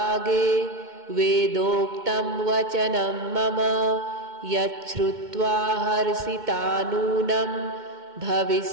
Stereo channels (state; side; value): late; left; 2.2 ms